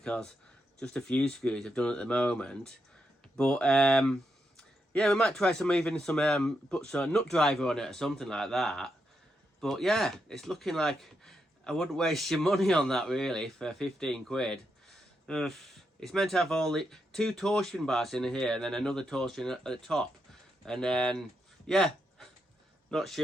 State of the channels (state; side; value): normal; both; correlation 0.83